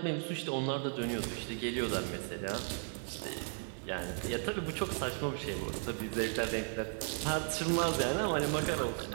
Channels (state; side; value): silent; left; 54 dB below the other